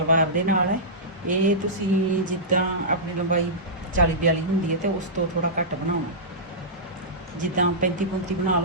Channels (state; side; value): normal; both; correlation -0.16